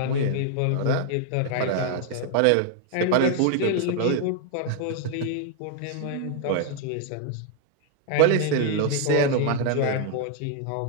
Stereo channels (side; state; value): both; different; correlation 0.00